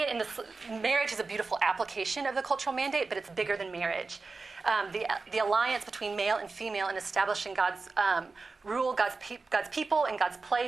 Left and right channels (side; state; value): left; quieter; 4.0 dB